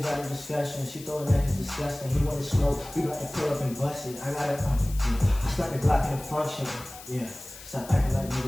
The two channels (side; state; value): left; noise; hiss, 16 dB below the sound